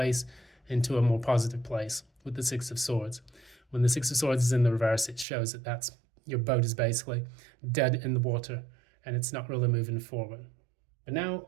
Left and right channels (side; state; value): left; drops out; at 5.2 s